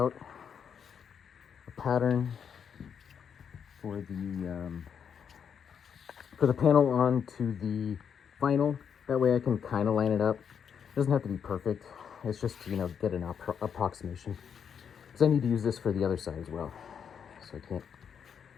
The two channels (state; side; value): quieter; right; 7.5 dB